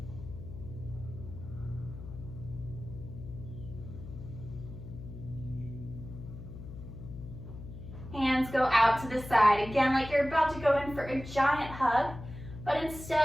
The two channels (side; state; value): left; noise; hum, 12 dB below the sound